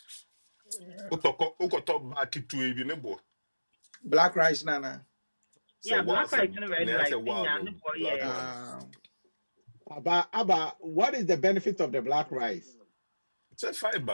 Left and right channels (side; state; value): both; inverted; correlation -1.00